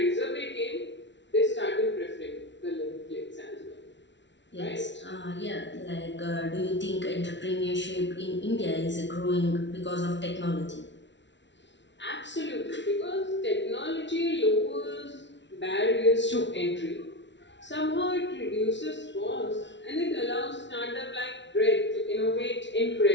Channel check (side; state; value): right; late; 0.52 ms